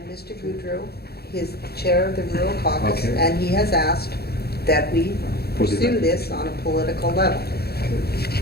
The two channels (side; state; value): right; late; 0.46 ms